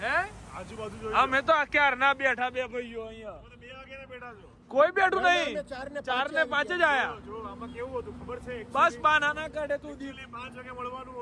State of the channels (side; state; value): both; identical; correlation 1.00